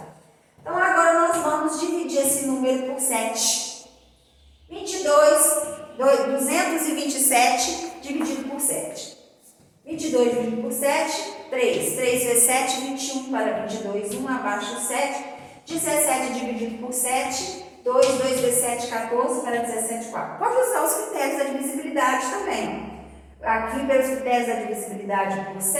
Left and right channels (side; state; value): both; identical; correlation 1.00